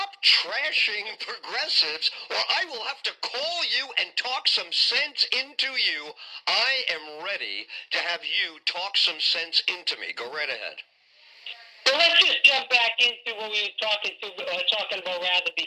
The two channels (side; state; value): both; identical; correlation 1.00